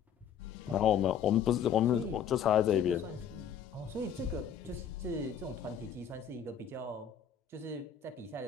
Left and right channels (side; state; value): right; quieter; 8.2 dB